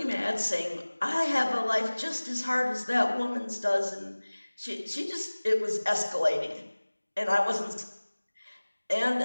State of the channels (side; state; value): both; inverted; correlation -1.00